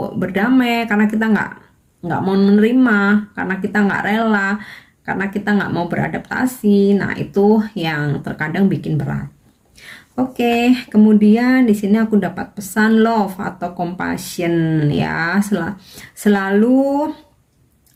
berdamai, karena kita nggak mau menerima, karena kita nggak rela, karena kita nggak mau beradaptasi. Nah, itu yang terkadang bikin berat. Oke, kemudian di sini aku dapat pesan love atau compassion ya. Selalu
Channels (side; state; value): both; identical; correlation 1.00